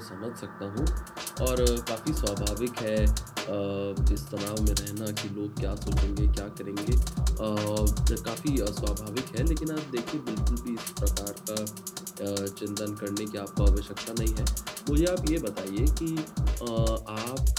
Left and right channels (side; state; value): both; identical; correlation 1.00